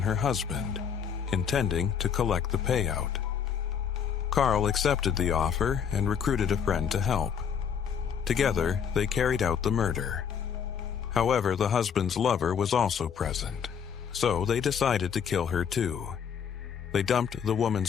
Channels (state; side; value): quieter; right; 7.6 dB